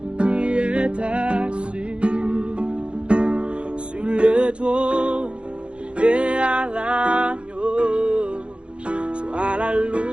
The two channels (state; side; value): late; left; 0.058 ms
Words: qui est assis sur le trône et à l'agneau. Soit la